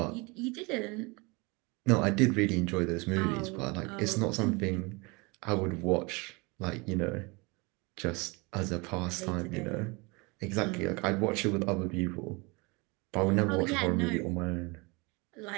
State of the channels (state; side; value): quieter; left; 27.3 dB